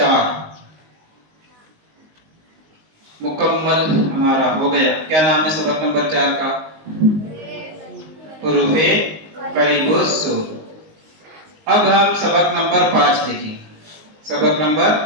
مکمل ہمارا ہو گیا۔ کیا نام ہے سبق نمبر 4 کا؟ حروف قریب الصوت۔ اب ہم سبق نمبر 5 دیکھیں۔ سبق نمبر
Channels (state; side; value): late; left; 19 ms